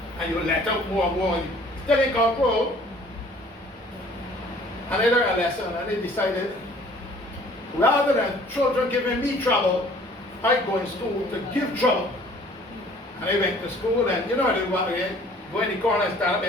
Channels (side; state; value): both; normal; correlation 0.54